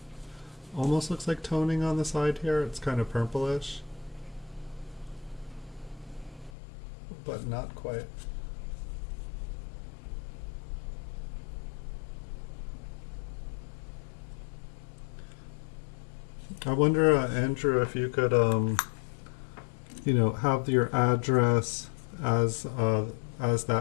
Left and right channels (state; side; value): drops out; right; at 6.5 s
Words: almost looks like toning on the side here. It's kind of purplish, but not quite. I wonder, Andrew, if you could, you know, have your address as